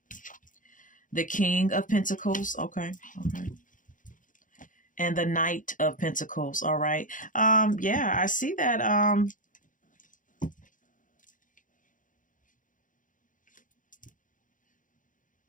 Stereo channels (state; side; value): late; right; 0.38 ms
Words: The King of Pentacles. Okay. Okay. And the Knight of Pentacles. All right. Yeah, I see that.